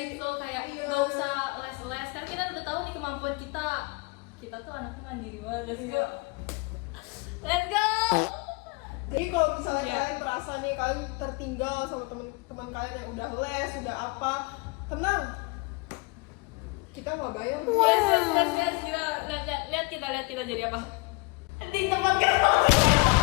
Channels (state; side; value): quieter; right; 27.8 dB